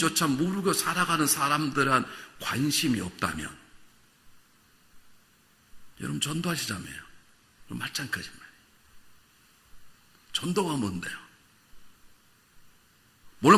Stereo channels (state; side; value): identical; both; correlation 1.00